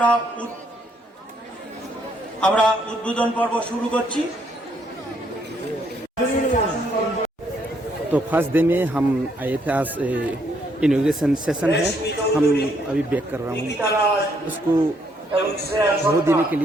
আমরা উদ্বোধন পর্ব শুরু করছি। तो फर्स्ट डे में हम आए थे, आज इनॉग्रेशन सेशन है, हम अभी बैक कर रहा हूँ। उसको बहुत देने के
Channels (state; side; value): normal; both; correlation 0.71